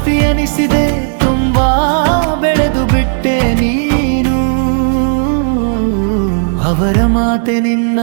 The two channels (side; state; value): left; silent; digital silence